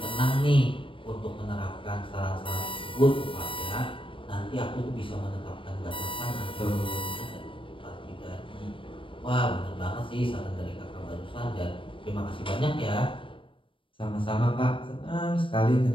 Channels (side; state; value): right; late; 0.25 ms